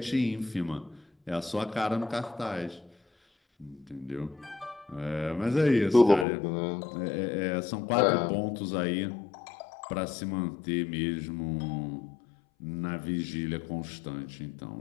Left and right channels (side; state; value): right; drops out; at 6.2 s